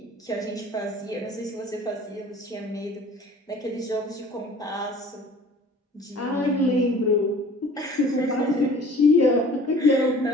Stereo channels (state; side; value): normal; both; correlation 0.48